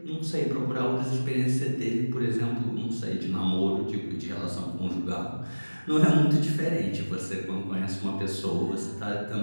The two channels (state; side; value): inverted; both; correlation -1.00